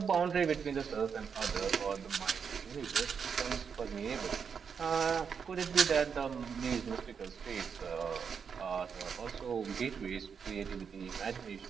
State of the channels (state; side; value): quieter; left; 6.5 dB